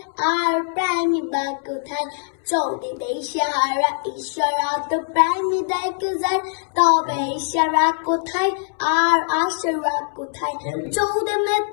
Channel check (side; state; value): right; silent; 64 dB below the other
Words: আর প্রেমিকা কোথায়? চলতি দেশহারা ঈশ্বরা তো প্রেমী দেখে যায়, তবে ইশারা কোথায় আর আশারা কোথায়? চলতে